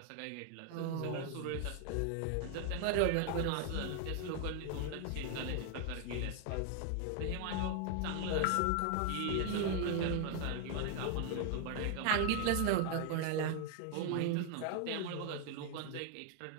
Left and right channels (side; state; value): both; different; correlation 0.00